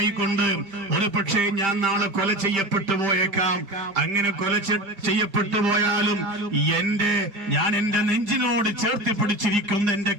ഒരു പക്ഷേ ഞാൻ നാളെ കൊല ചെയ്യപ്പെട്ടു പോയേക്കാം. അങ്ങനെ കൊല ചെയ്യപ്പെട്ടു പോയാലും ഞാൻ എന്റെ നെഞ്ചിനോട് ചേർത്ത് പിടിച്ചിരിക്കുന്ന എന്റെ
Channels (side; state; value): left; late; 4.8 ms